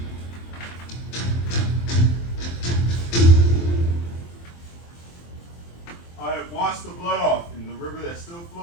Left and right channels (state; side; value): late; right; 23 ms